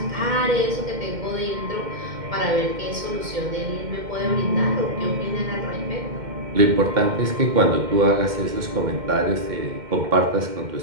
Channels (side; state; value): left; late; 2.1 ms